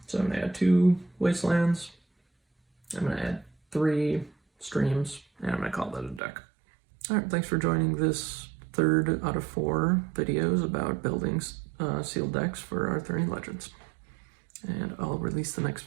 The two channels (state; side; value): drops out; left; at 6.2 s